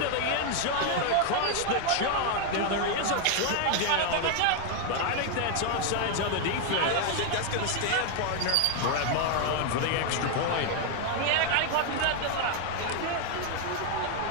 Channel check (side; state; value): both; different; correlation 0.01